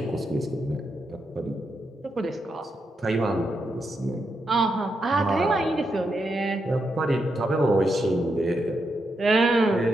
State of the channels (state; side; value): normal; both; correlation 0.83